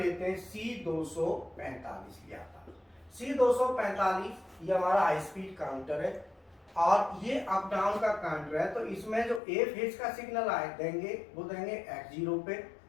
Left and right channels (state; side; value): drops out; right; at 9.4 s